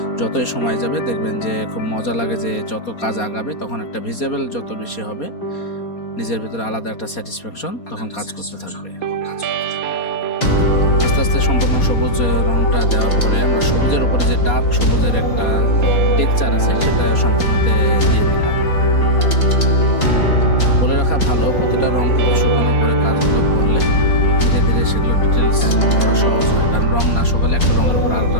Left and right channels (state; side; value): late; right; 4.2 ms